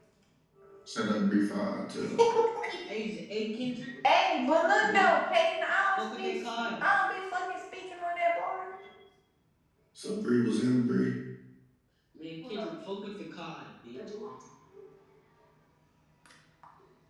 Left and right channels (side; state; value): both; identical; correlation 1.00